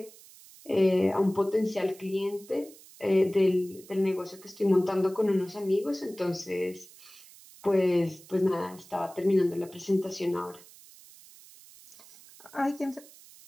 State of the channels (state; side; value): noise; right; hiss, 22 dB below the sound